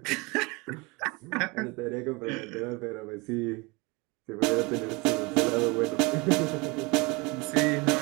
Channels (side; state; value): left; quieter; 26.5 dB